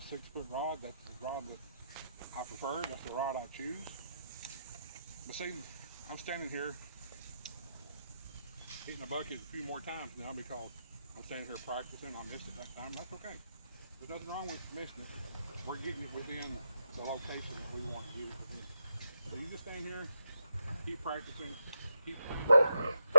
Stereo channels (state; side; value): inverted; both; correlation -0.85